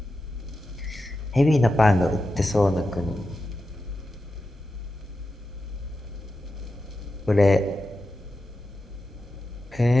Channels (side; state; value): both; normal; correlation 0.90